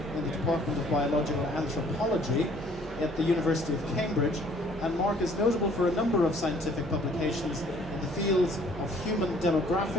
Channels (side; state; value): both; normal; correlation 0.58